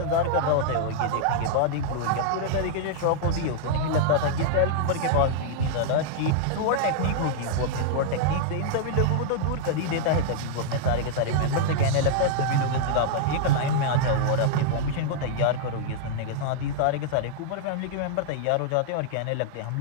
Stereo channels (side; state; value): both; different; correlation -0.01